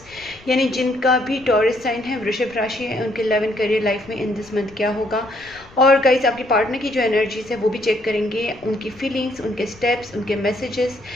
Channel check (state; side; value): noise; left; rumble, 24 dB below the sound